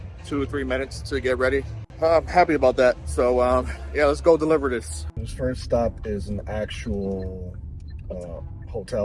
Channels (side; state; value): both; identical; correlation 1.00